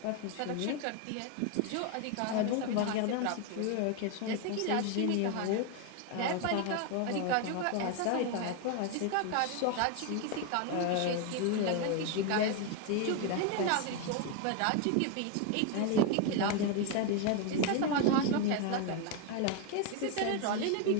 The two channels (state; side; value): different; both; correlation 0.01